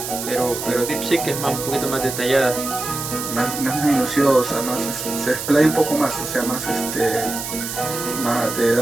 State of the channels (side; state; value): right; noise; hiss, 6 dB below the sound